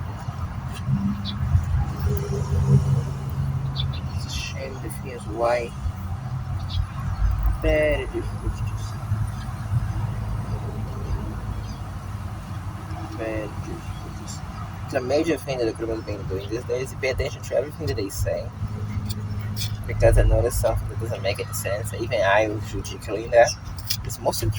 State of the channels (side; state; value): both; identical; correlation 1.00